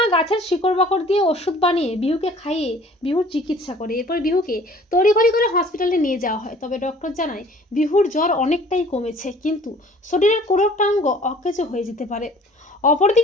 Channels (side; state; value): both; normal; correlation 0.51